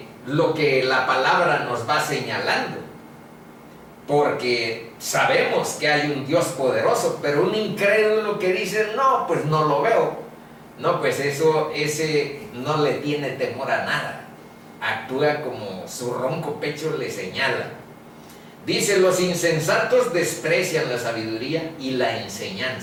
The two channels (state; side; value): identical; both; correlation 1.00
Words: lo que la palabra nos va señalando. Porque sabemos que hay un Dios poderoso, pero un incrédulo que dice, no, pues no lo veo. No, pues ese no le tiene temor a nada. Actúa como su ronco pecho le señala. Dice, los insensatos desprecian la sabiduría y la